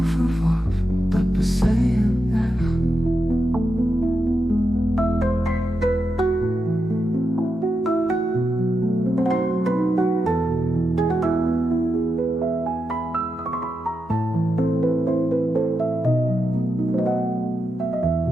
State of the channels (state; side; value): normal; both; correlation 0.87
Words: verworf, dat beseien echt.